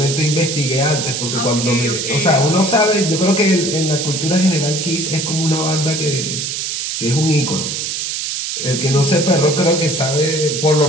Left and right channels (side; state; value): right; noise; hiss, 3 dB below the sound